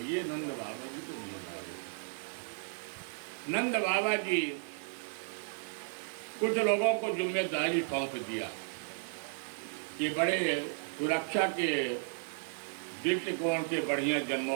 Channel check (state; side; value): silent; left; digital silence